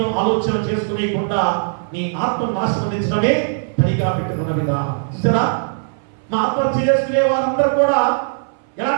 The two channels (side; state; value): left; silent; 62 dB below the other